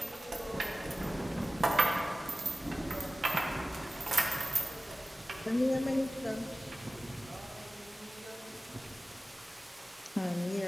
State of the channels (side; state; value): both; normal; correlation 0.95